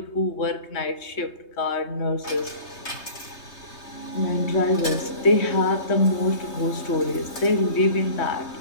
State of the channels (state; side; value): late; right; 3.2 ms